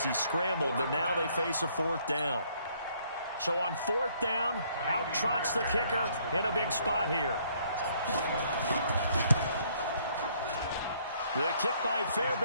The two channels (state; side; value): inverted; both; correlation -0.65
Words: he scrambled, but now they face a 4th down. So on 4th down, out trots the kicker in a big spot here. The kick by